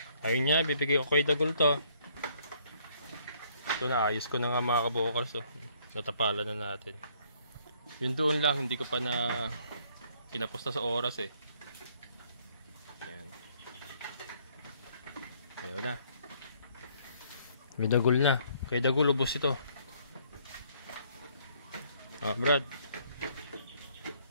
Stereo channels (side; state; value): both; inverted; correlation -0.65